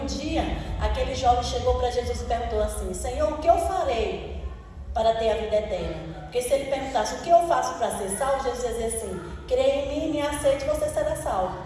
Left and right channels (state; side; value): identical; both; correlation 1.00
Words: dia aquele jovem chegou para Jesus e perguntou assim: Senhor, o que eu farei para ter a vida eterna? Porque se ele perguntasse o que eu faço para ser salvo, Jesus ia dizer assim: creia em mim, me aceite, você será salvo.